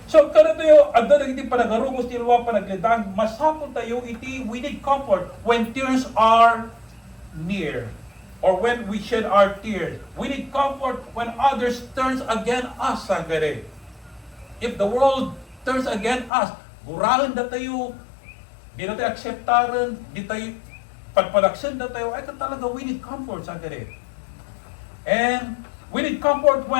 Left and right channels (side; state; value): right; drops out; at 16.3 s